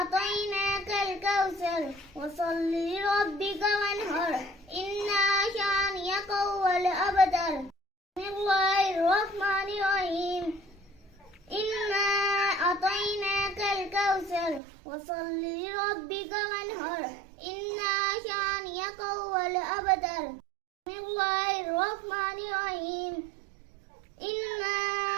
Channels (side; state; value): left; drops out; at 14.6 s